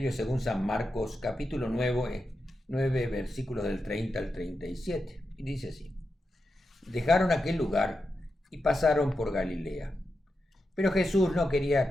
según San Marcos, capítulo 9, versículos del 30 al 37. Y dice así: Dejaron aquel lugar y pasaron por Galilea. Pero Jesús no quería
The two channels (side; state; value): both; normal; correlation 0.88